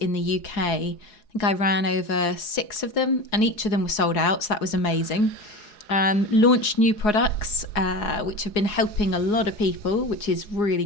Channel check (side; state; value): right; late; 4.8 ms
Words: the UK. I think I ran over 6 of them, and each of them were sold out, so that was amazing. Launched new products, which have been helping a lot of people, which is really